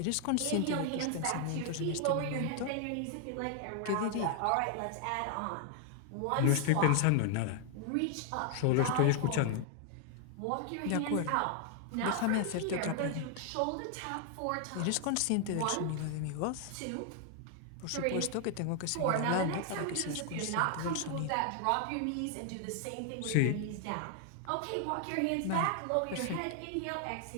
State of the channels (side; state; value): both; different; correlation 0.00